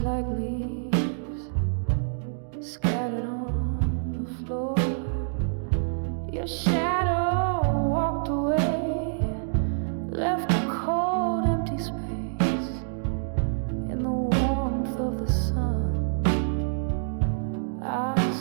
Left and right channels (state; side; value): silent; left; digital silence